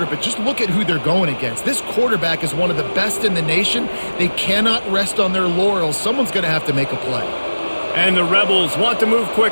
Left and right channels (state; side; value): inverted; both; correlation -1.00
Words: but just look at who they're going against. This quarterback is one of the best in the nation. They cannot rest on their laurels. Someone's going to have to make a play. And the Rebels want to move